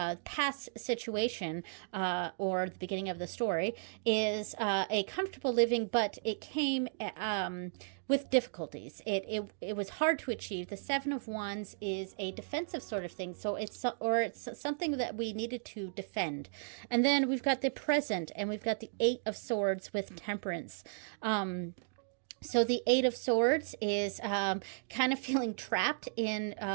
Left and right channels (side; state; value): left; silent; digital silence